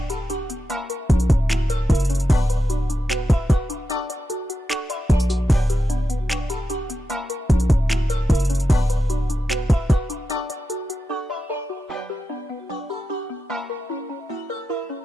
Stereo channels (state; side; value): normal; both; correlation 0.88